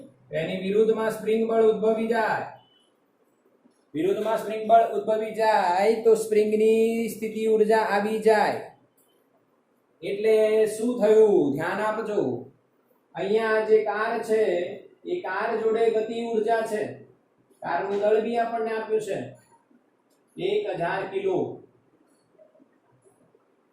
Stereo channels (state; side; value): identical; both; correlation 1.00